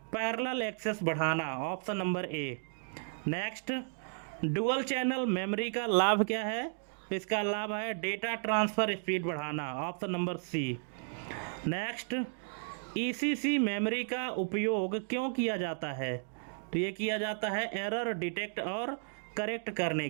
पैरेलल एक्सेस बढ़ाना, option number A. Next, dual channel memory का लाभ क्या है? इसका लाभ है डेटा ट्रांसफ़र स्पीड बढ़ाना, option number C. Next, ECC memory का उपयोग क्यों किया जाता है? तो ये किया जाता है एरर डिटेक्ट और करेक्ट करने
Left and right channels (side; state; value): left; silent; 55 dB below the other